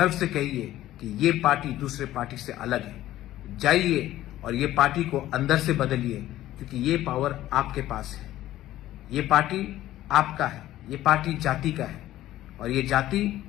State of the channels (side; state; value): right; quieter; 14.3 dB